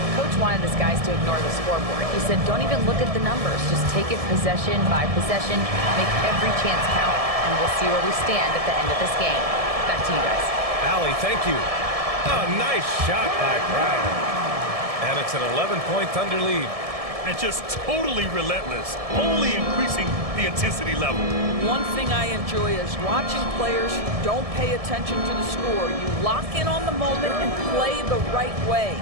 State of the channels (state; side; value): late; left; 1.7 ms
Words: Coach wanted his guys to ignore the scoreboard. He said, don't even look at the numbers. Just take it possession by possession, make every chance count, and we'll see where we stand at the end of this game. Back to you guys. Allie, thank you. A nice shot by Brown. And it's an 11-point Thunder lead. And just totally relentless, only increasing the intensity level. One thing I enjoy is watching players who don't pay attention to the score. You lock in on the moment and play the right way.